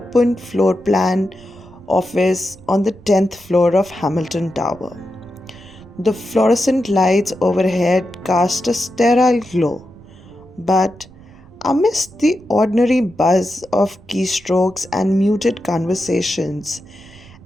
floor plan office on the 10th floor of Hamilton Tower. The fluorescent lights overhead cast a sterile glow, but amidst the ordinary buzz of keystrokes and muted conversations,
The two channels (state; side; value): noise; right; rumble, 23 dB below the sound